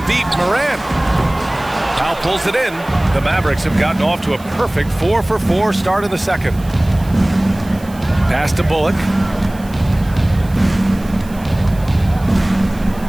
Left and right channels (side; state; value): right; noise; hiss, 22 dB below the sound